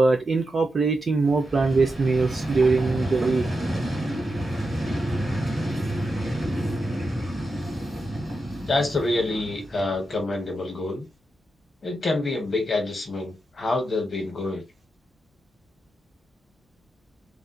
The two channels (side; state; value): both; normal; correlation 0.88